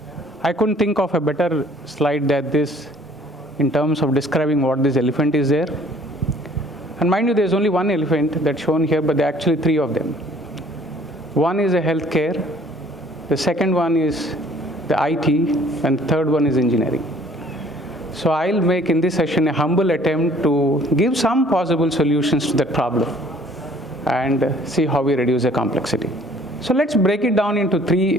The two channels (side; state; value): both; normal; correlation 0.56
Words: I couldn't think of a better slide than this in terms of describing what this elephant is there. And mind you, there's only one elephant that's shown here, but there are actually three of them. One is a healthcare, the second one is the IT, and the third one is engineering. So I'll make in this session a humble attempt to give some possible solutions to that problem and see how we reduce the complexity. So let's break it down into